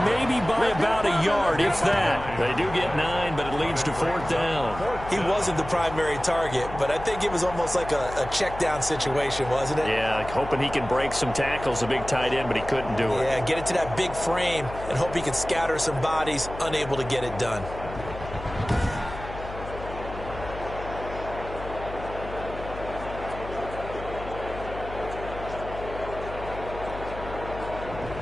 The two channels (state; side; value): noise; left; hum, 11 dB below the sound